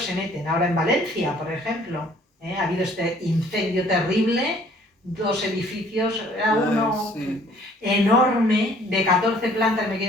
se meten. Ahora en Valencia, por ejemplo, ha habido este incendio terrible, 2 edificios, era uno enorme, de 14 plantas, me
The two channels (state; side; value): normal; both; correlation 0.58